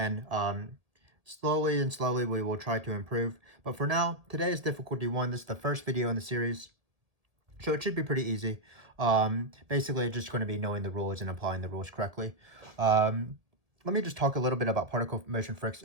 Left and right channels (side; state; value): left; late; 1.6 ms